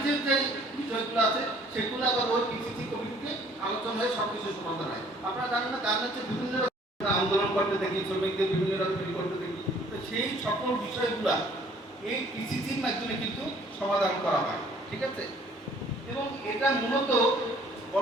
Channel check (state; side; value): normal; both; correlation 0.57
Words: যে বিষয়গুলো আছে সেগুলো আবার ওই পিসিসি কমিটিতে আলোচনা হয়ে সবকিছু সমাধান হয়। আপনারা জানেন না গার্মেন্টসের বিভিন্ন আন্দোলন করতে দেখি, শ্রমিকদের বিভিন্ন রকম করতে দেখি, তো সেই সকল বিষয়গুলা এই পিসিসির মাধ্যমে কিন্তু সমাধান করা হয়, ঠিক আছে। এবং এটা মূলত